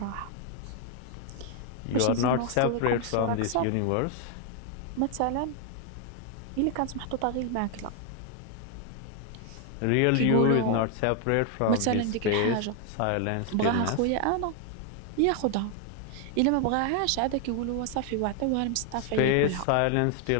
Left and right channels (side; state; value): both; different; correlation 0.00